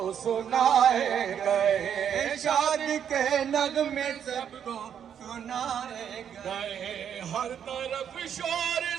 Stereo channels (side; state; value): left; quieter; 8.6 dB